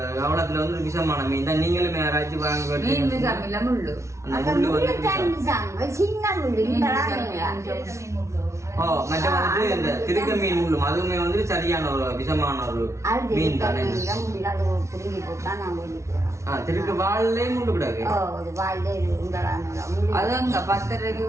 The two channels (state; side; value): late; left; 0.14 ms